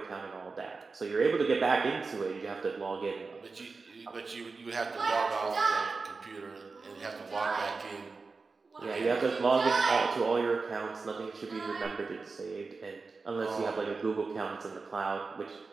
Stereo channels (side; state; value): left; quieter; 4.3 dB